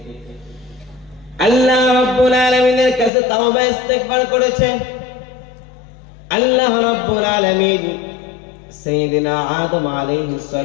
আল্লাহ রাব্বুল আলামিনের কাছে তাওবা ইস্তেগফার করেছে। আল্লাহ রাব্বুল আলামিন সাইয়েদনা আদম আলাইহিস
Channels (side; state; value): right; drops out; at 3.1 s